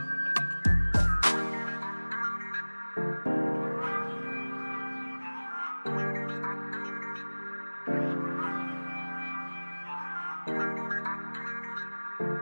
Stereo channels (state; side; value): inverted; both; correlation -1.00